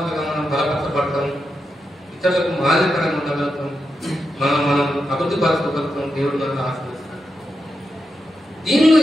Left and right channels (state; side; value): normal; both; correlation 0.87